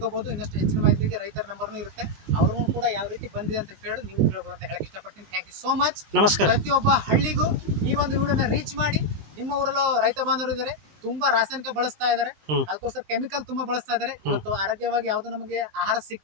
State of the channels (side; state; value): left; late; 19 ms